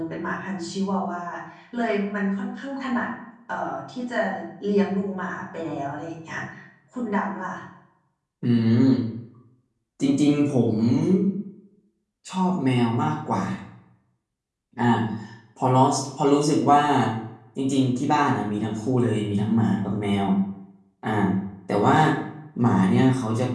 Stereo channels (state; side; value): identical; both; correlation 1.00